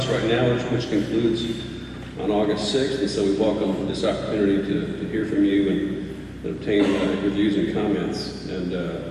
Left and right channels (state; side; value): identical; both; correlation 1.00